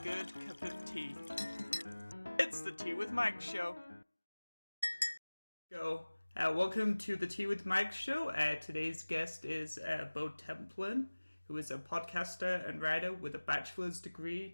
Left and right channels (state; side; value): inverted; both; correlation -1.00